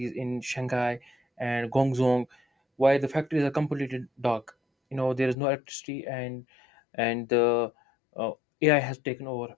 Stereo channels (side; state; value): right; drops out; at 5.4 s